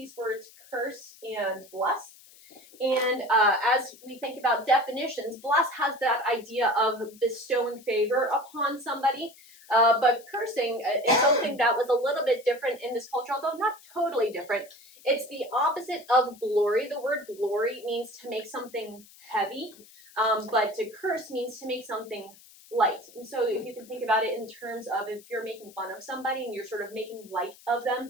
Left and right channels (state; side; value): noise; left; hiss, 23 dB below the sound